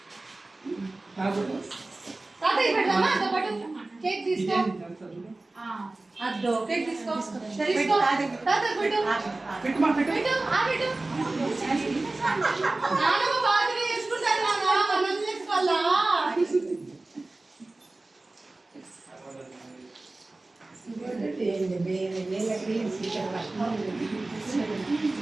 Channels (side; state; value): left; quieter; 3.0 dB